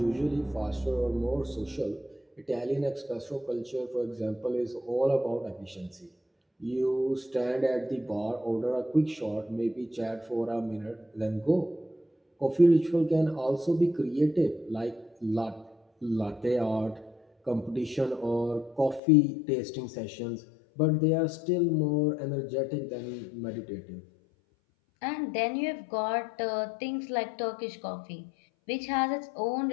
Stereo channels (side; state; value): right; drops out; at 19.0 s